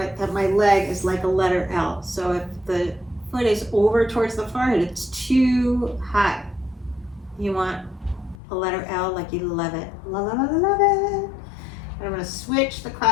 that my leg is like a letter L. So if the foot is over towards the forehead, it's too high. You want a letter L like you love it. Love it, love it, love it. And I'm going to switch the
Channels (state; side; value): drops out; right; at 8.3 s